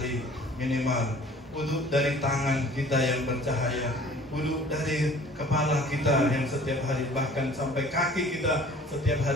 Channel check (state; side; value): normal; both; correlation 0.49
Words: minimal. Wuduk dari tangan kita yang bercahaya. Wuduk dari kepala kita yang setiap hari, bahkan sampai kaki kita setiap